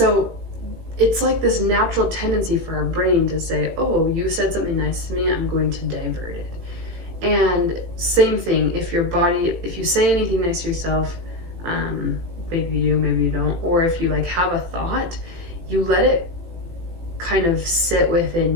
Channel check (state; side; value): late; left; 18 ms